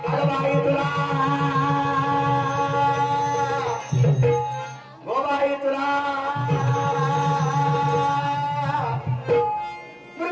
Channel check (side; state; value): both; identical; correlation 1.00